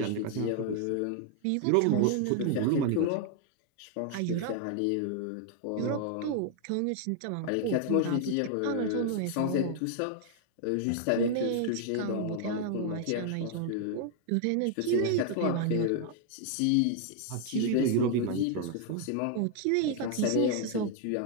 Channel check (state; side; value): different; both; correlation 0.00